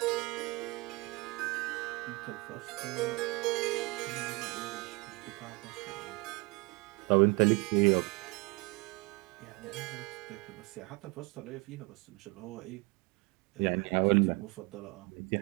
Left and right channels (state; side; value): quieter; left; 26.2 dB